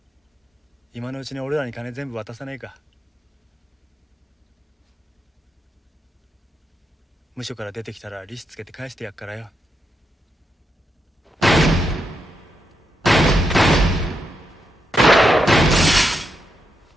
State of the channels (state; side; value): normal; both; correlation 0.83